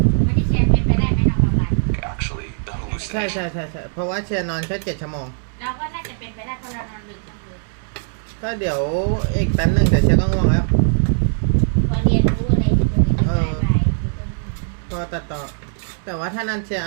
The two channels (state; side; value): silent; left; digital silence